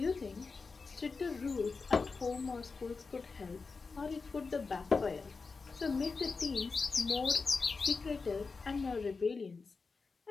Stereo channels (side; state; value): right; quieter; 4.5 dB